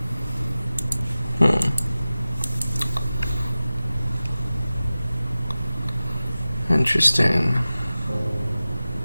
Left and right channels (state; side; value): inverted; both; correlation -0.97